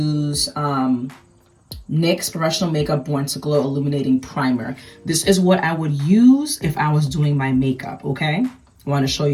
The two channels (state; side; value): identical; both; correlation 1.00